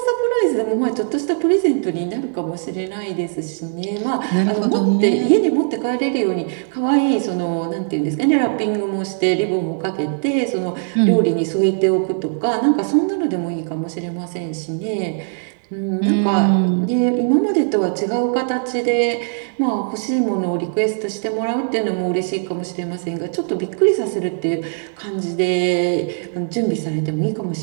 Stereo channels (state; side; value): silent; left; digital silence